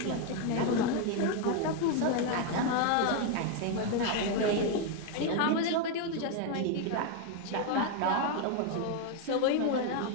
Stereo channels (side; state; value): both; different; correlation 0.01